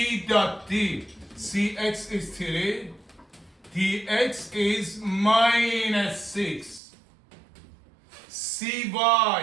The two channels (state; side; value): drops out; left; at 6.8 s